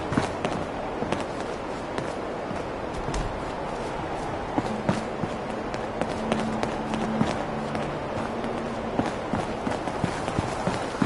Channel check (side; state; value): both; identical; correlation 1.00